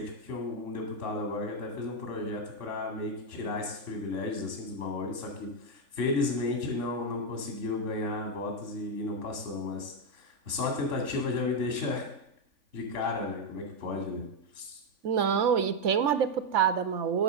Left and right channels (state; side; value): late; left; 3.5 ms